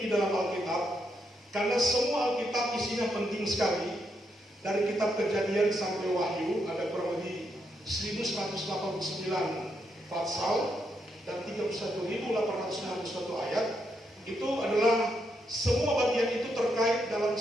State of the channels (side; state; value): both; normal; correlation 0.79